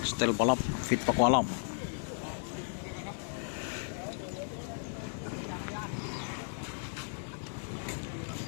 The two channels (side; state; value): right; silent; digital silence